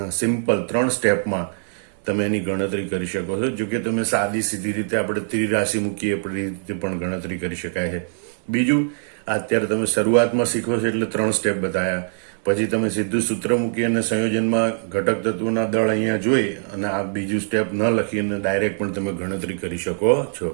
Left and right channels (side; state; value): left; silent; digital silence